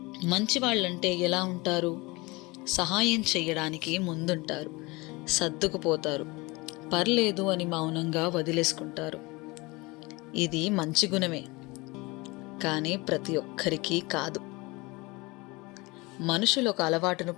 మంచి వాళ్ళంటే ఎలా ఉంటారు? సహాయం చేయడానికి ముందుంటారు, సర్దుకుపోతారు, పర్లేదు అని మౌనంగా వదిలేసుకుంటారు. ఇది మంచి గుణమే, కానీ ప్రతి ఒక్కరికి కాదు. మనుషులు ఒక అలవాటును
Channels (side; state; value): right; quieter; 24.2 dB